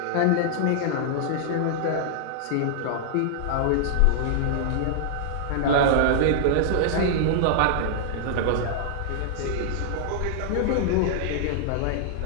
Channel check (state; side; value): different; both; correlation -0.01